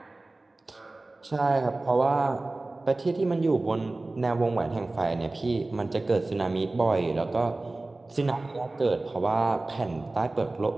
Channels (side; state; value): left; quieter; 3.0 dB